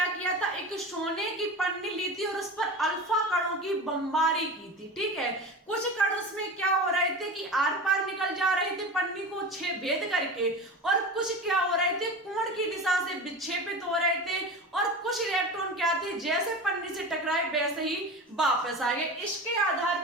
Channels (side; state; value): both; normal; correlation 0.30